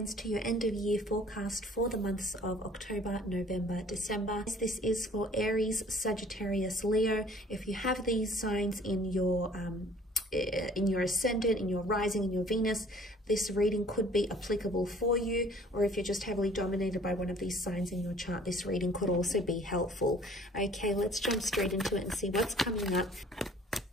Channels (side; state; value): both; normal; correlation 0.53